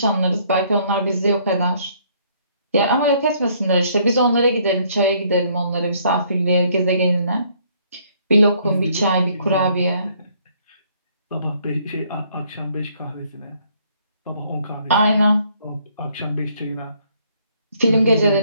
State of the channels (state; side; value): inverted; both; correlation -0.65